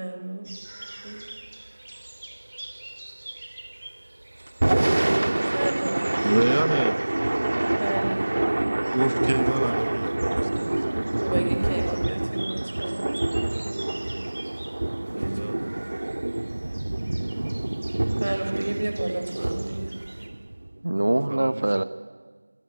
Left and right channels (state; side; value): inverted; both; correlation -1.00